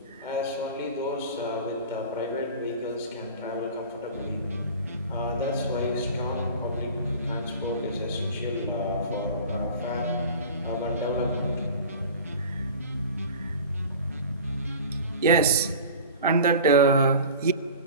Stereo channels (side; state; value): both; inverted; correlation -0.38